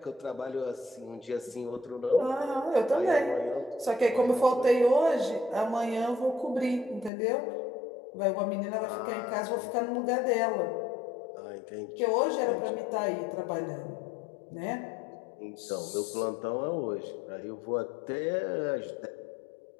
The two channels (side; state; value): right; drops out; at 7.1 s